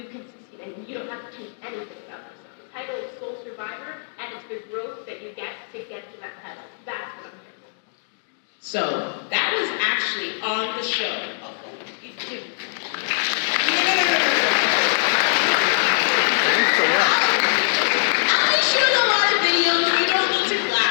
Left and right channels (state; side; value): silent; right; digital silence